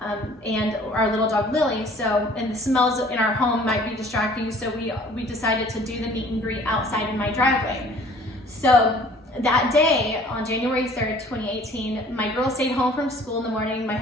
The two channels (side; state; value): both; normal; correlation 0.52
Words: and our little dog Lily. So, and the smells in our home might be distracting. So we decided to do the meet and greet outside in my driveway. So that day on January 3rd, 2018, my girls stayed home from school in the morning. My